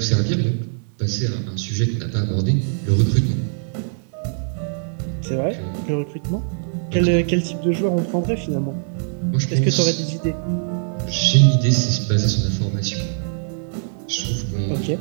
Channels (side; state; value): left; silent; 63 dB below the other